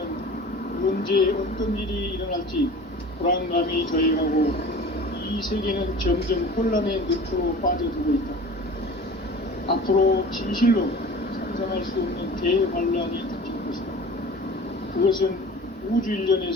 언제 어떤 일이 일어날지 불안감이 더해가고 이 세계는 점점 혼란의 늪으로 빠져들고 있다. 앞으로 진실로 상상할 수 없는 대환란이 닥칠 것이다. 그것은 우주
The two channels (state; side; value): normal; both; correlation 0.40